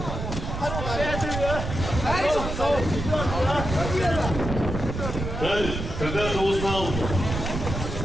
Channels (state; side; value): noise; right; rumble, 4 dB below the sound